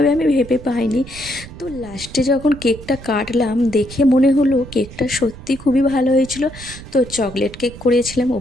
আমি ভেবে পাইনি। তো লাস্টে যখন কেকটা কাটলাম দেখে মনে হলো কেকটা সত্যি খুবই ভালো হয়েছিল। তো চকলেট কেক করেছিলাম,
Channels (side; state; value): right; noise; rumble, 16 dB below the sound